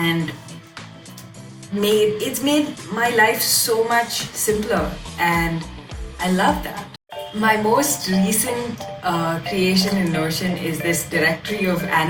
it's made my life so much simpler, and I love that. My most recent creation in Notion is this directory of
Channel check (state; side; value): identical; both; correlation 1.00